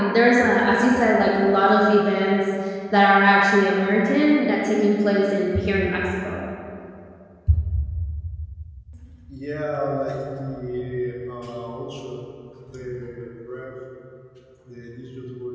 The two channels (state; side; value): identical; both; correlation 1.00